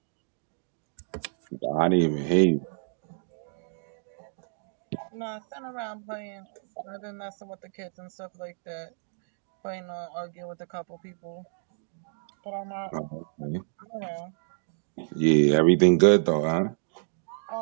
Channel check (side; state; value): left; silent; digital silence